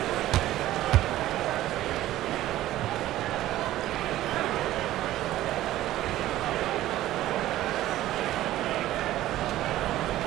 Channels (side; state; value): left; quieter; 14.6 dB